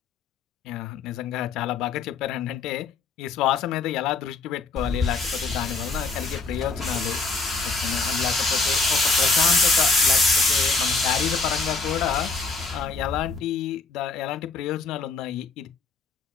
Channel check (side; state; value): right; quieter; 4.1 dB